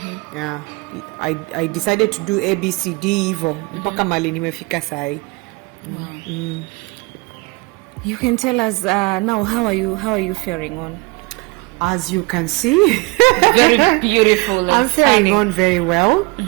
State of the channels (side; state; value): left; quieter; 26.5 dB